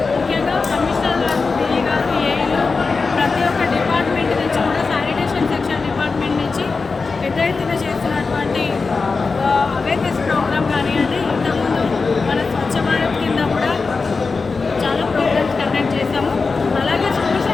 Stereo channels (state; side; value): quieter; right; 4.4 dB